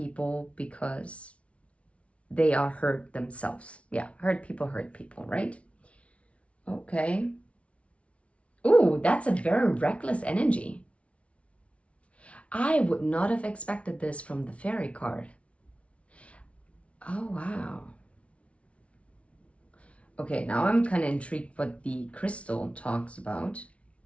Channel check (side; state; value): right; late; 0.062 ms